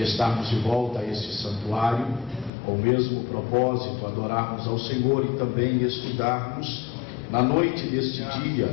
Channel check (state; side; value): drops out; right; at 2.5 s